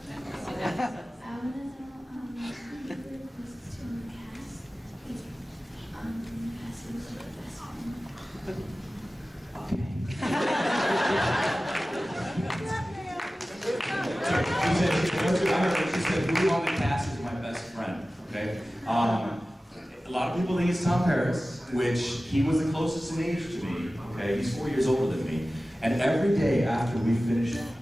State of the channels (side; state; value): both; normal; correlation 0.96